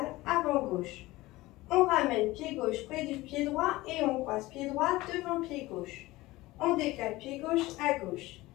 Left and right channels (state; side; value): quieter; right; 19.1 dB